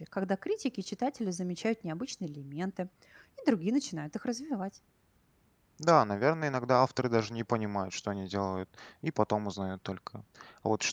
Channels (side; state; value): both; identical; correlation 1.00